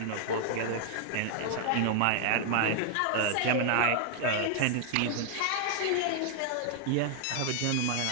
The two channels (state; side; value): different; both; correlation 0.00